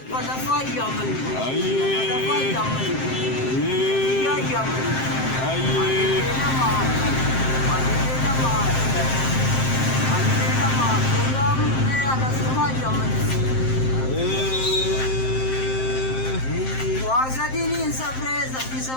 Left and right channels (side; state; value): right; late; 7.6 ms